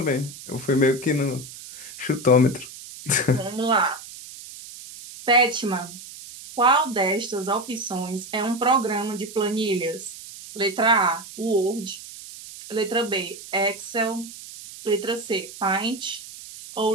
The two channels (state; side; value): noise; right; hiss, 15 dB below the sound